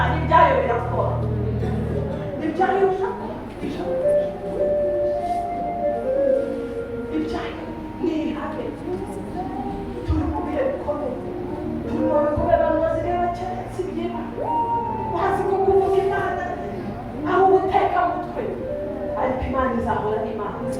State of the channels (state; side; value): identical; both; correlation 1.00